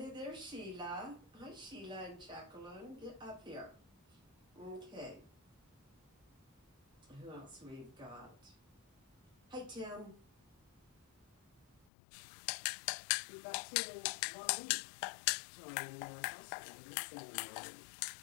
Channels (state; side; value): drops out; right; at 11.9 s